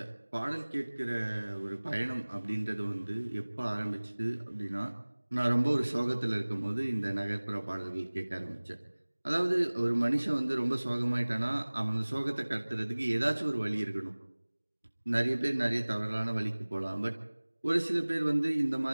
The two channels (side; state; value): both; inverted; correlation -1.00